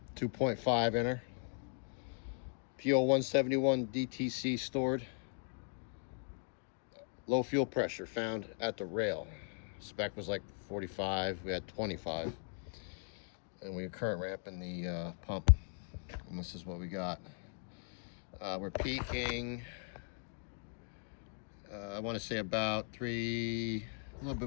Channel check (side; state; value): right; silent; 52 dB below the other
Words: 2.5 inner. P0171 DTC stored. Low fuel pressure found at the rail. Spec was like 45. We had 25. And we are current ramping the pump. And this is what we got. We're peaking, I want to say about a little